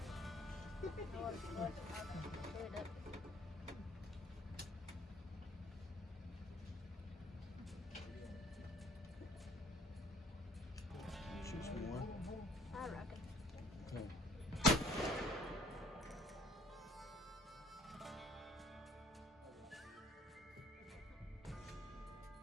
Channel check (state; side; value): normal; both; correlation 0.56